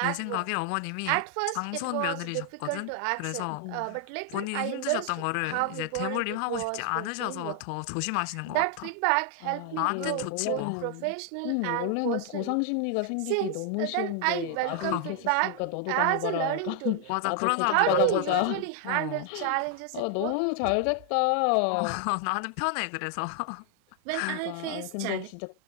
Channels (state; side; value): different; both; correlation 0.00